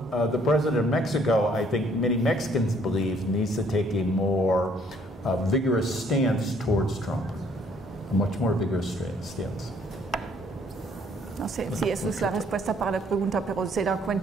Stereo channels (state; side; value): normal; both; correlation 0.63